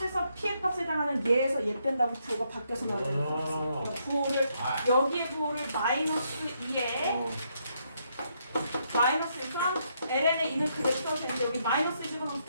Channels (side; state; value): both; inverted; correlation -0.76